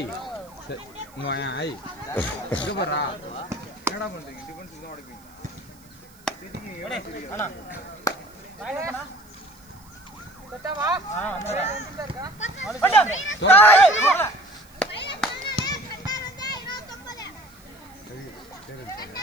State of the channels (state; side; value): noise; right; hiss, 27 dB below the sound